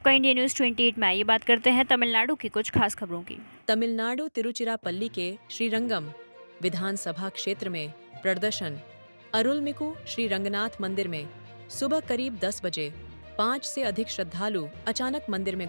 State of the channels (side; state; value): both; inverted; correlation -1.00